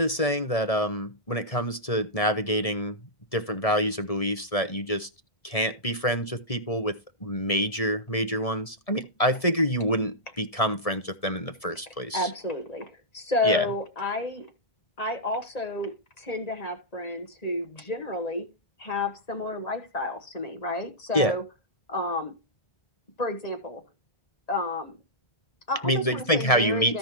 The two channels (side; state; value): right; late; 1.7 ms